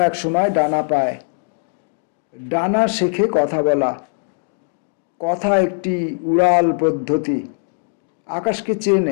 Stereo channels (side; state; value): right; silent; digital silence